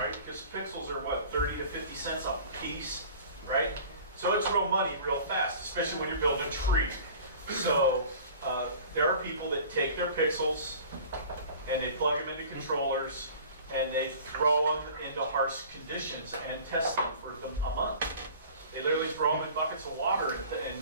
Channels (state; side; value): inverted; both; correlation -0.43